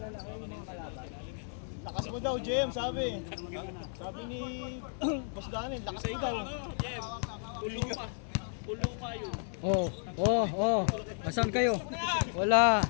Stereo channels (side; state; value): right; silent; 56 dB below the other